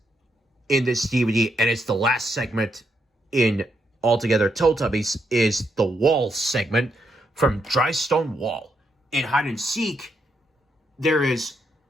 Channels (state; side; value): normal; both; correlation 0.79